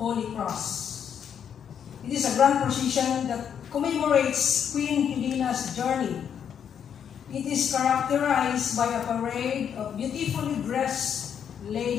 Cross. It is a grand procession that commemorates Queen Helena's journey. It is characterized by a parade of beautifully dressed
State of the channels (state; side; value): quieter; right; 8.2 dB